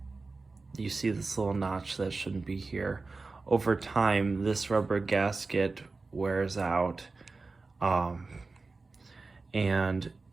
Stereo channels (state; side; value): quieter; left; 3.8 dB